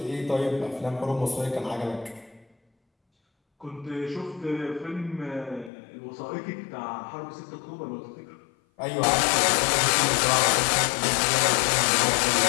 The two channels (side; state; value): right; drops out; at 5.7 s